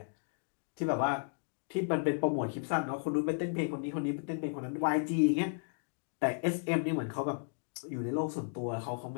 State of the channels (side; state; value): right; silent; digital silence